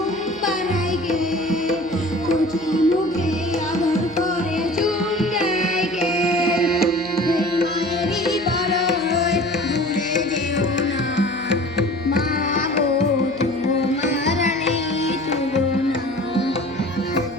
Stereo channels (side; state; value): right; noise; hum, 22 dB below the sound